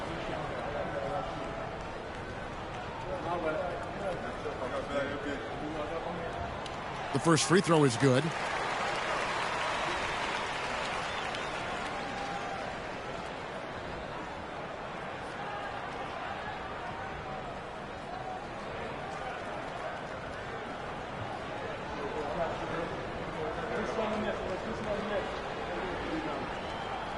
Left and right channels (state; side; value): identical; both; correlation 1.00